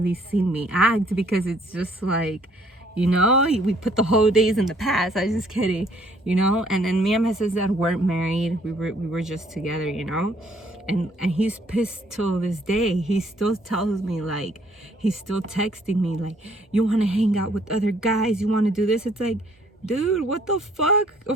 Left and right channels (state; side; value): normal; both; correlation 0.63